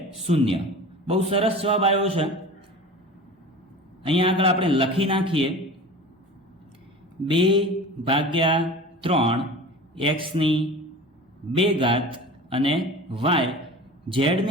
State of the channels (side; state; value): both; normal; correlation 0.36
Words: 0. બહુ સરસ જવાબ આવ્યો છે. અહીંયા આગળ આપણે લખી નાખીએ 2/3 એક્સની 2 ઘાત અને વાય